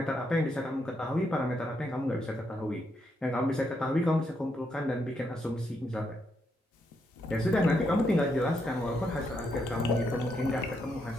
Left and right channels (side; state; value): both; normal; correlation 0.79